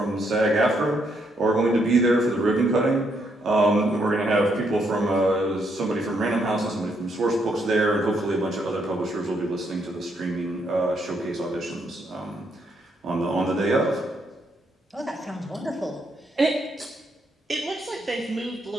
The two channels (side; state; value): both; normal; correlation 0.75